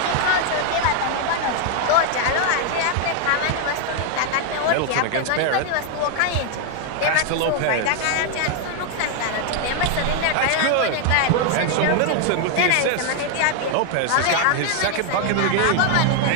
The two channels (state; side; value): different; both; correlation 0.00